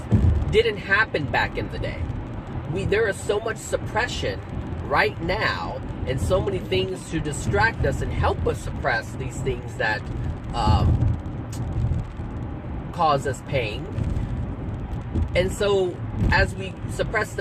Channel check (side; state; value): both; identical; correlation 1.00